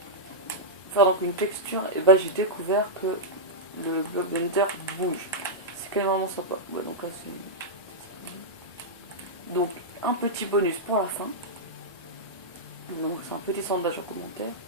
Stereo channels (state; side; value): normal; both; correlation -0.09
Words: Faire donc une texture, et bah j'ai découvert que le bloc de Nether bouge. C'est quand même vraiment sympa. Ouais, donc là c'est... Donc un petit bonus pour la fin. Donc c'est un petit sondage en commentaire.